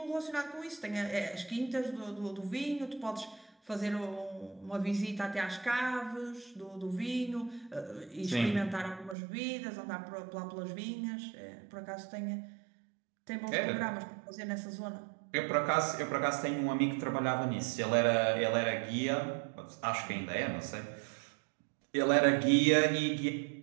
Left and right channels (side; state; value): left; drops out; at 9.2 s